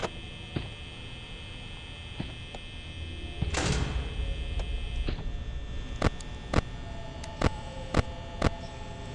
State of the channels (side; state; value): both; identical; correlation 1.00